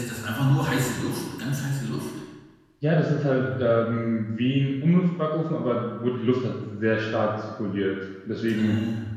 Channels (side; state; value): both; identical; correlation 1.00